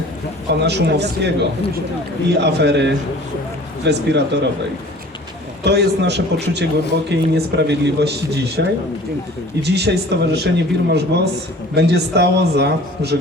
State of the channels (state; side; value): normal; both; correlation 0.47